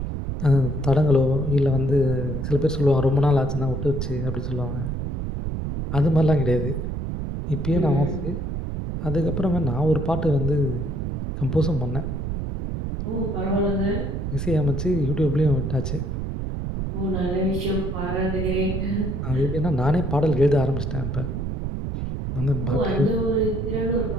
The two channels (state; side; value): noise; right; rumble, 3 dB below the sound